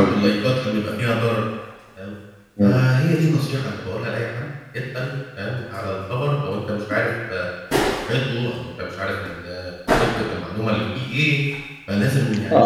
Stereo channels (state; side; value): identical; both; correlation 1.00